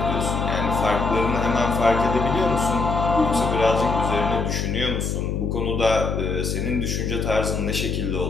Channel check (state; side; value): noise; left; hum, 1 dB below the sound